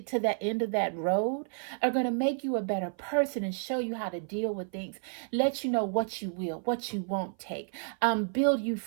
to that end of that road are going to make you a better person and show you how to deal with things, let you know what you will, what you won't take, build you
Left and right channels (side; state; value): left; silent; 55 dB below the other